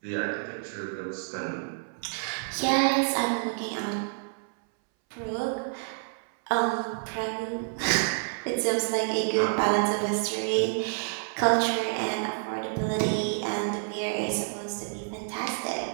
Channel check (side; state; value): left; silent; 59 dB below the other